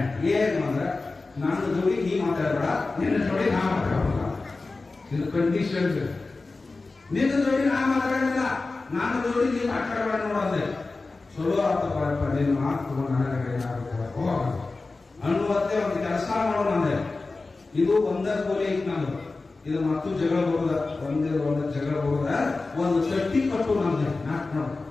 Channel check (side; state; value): right; quieter; 3.6 dB